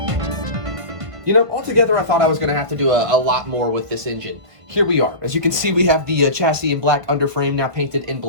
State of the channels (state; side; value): late; left; 1.5 ms